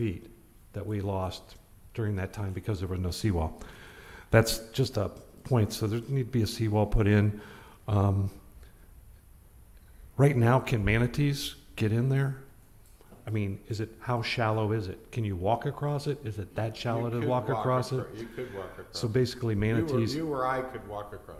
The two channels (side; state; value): both; identical; correlation 1.00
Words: that we lost during that time because there was no seawall. That's just a point. So there need to be a seawall put in. Right now, can manatees get in there? I mean, how shallow is it? Can you walk across it? Is it that shallow to walk across it? You could walk across. So basically manatees. You or I could walk